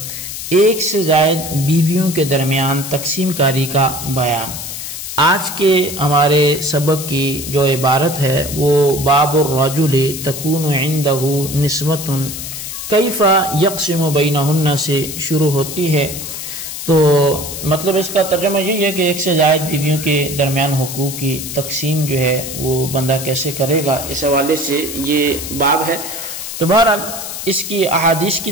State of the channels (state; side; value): noise; left; hiss, 8 dB below the sound